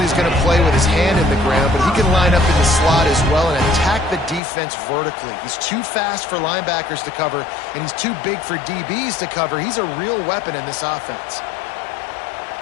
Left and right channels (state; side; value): drops out; right; at 4.4 s